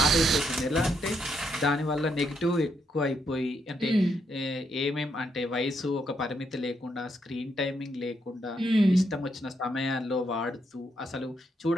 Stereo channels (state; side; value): normal; both; correlation 0.78